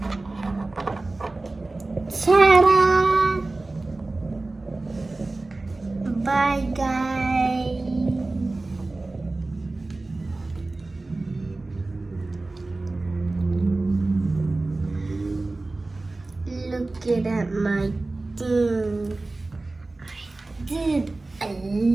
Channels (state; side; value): quieter; left; 3.2 dB